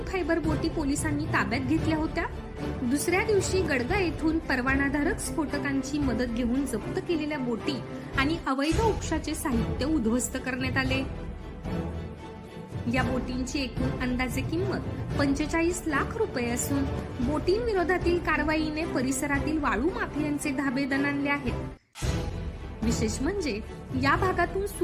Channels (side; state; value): both; identical; correlation 1.00